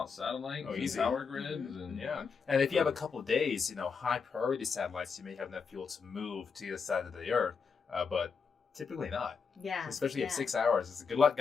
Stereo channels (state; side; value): quieter; right; 5.6 dB